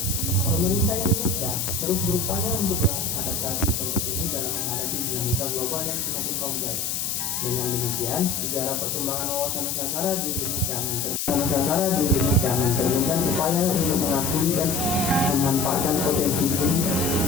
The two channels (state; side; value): noise; left; hiss, 1 dB below the sound